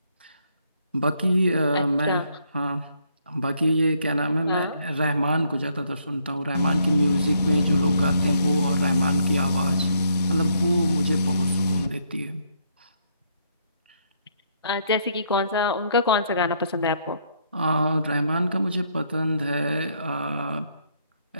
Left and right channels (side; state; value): both; inverted; correlation -0.71